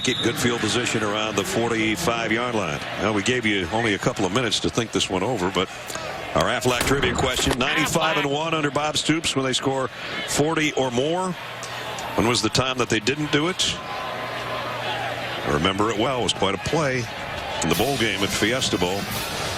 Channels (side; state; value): both; identical; correlation 1.00